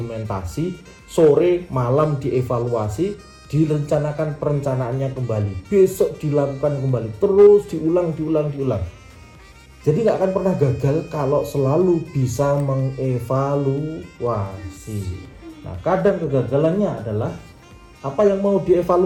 sore malam dievaluasi, direncanakan perencanaannya kembali, besok dilakukan kembali, terus diulang. Jadi nggak akan pernah gagal kalau selalu bisa mengevaluasi. Nah, kadang kegagalannya adalah apa yang mau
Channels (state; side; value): identical; both; correlation 1.00